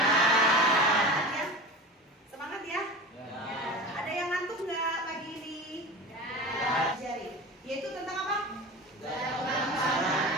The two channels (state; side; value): normal; both; correlation 0.31